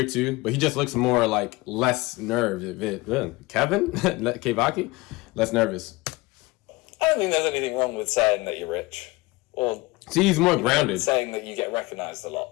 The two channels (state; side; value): quieter; right; 21.9 dB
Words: too, but he just looks more like less nervous. Kevin? KEVAKI? Less nervous. I don't think there's anything wrong with saying that you're rich, or See, he's more grounded. saying that you get recognised a